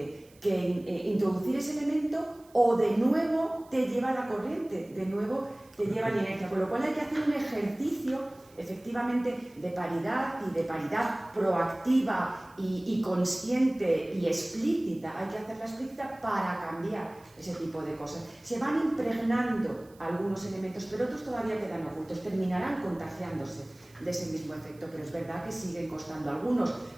que introducir ese elemento, o de nuevo te lleva la corriente, de nuevo te lleva la inercia, con lo cual hay que hacer un ejercicio efectivamente de paridad y de paridad proactiva y consciente y explícita. Hay que hacerla explícita para cambiar ese tipo de cosas. Se van impregnando algunos elementos, pero otros todavía quedan ocultos, terminarán contagiándose de ese mismo efecto, pero es verdad que siguen costando. Algunos,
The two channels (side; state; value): right; noise; hiss, 28 dB below the sound